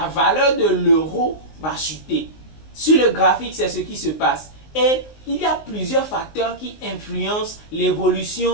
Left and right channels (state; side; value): late; right; 19 ms